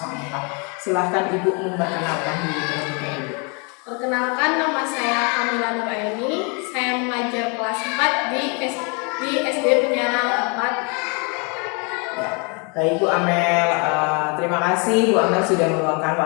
Silahkan Ibu memperkenalkan diri terlebih dahulu. Perkenalkan, nama saya Kamila Nuraini. Saya mengajar kelas 4 di SD Penyarang 4. Baik Bu Amel, terima kasih Bu Amel sudah meluangkan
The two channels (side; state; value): right; quieter; 33.9 dB